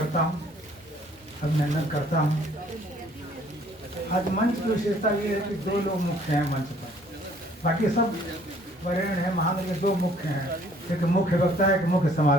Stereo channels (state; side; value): normal; both; correlation 0.59